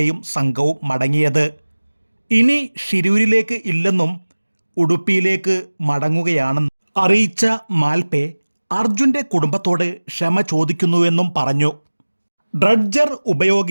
സംഘവും മടങ്ങിയത്. ഇനി ഷിരൂരിലേക്ക് ഇല്ലെന്നും ഉടുപ്പിയിലേക്ക് മടങ്ങുകയാണെന്ന് അറിയിച്ച മാൽപേ അർജുൻ്റെ കുടുംബത്തോട് ക്ഷമ ചോദിക്കുന്നുവെന്നും പറഞ്ഞു. ഡ്രഡ്ജർ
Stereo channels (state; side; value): inverted; both; correlation -1.00